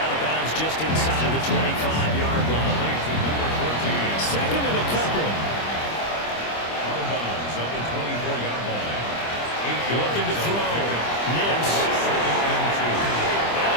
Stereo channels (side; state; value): right; late; 25 ms